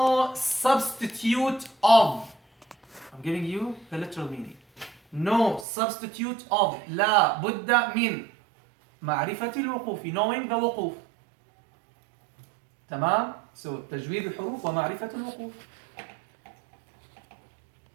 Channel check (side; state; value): left; drops out; at 5.7 s